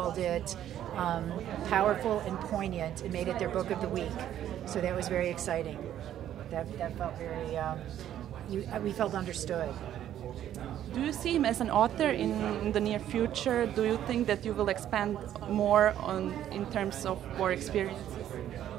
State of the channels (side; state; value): left; quieter; 11.3 dB